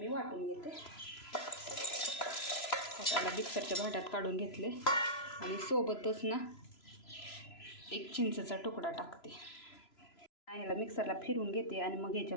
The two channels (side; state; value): right; late; 3.0 ms